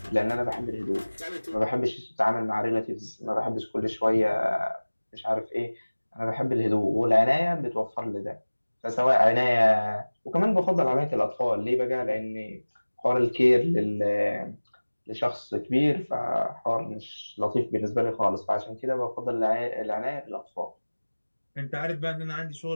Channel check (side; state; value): both; inverted; correlation -1.00